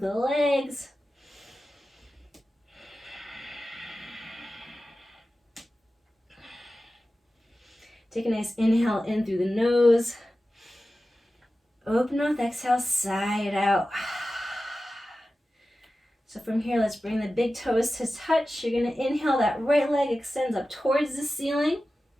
legs. Take a nice inhale in through the nose. Open mouth, exhale, side out. So from here, let's bring the big toes to touch. You're gonna inhale, that right leg extends up towards the ceiling.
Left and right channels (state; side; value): normal; both; correlation 0.94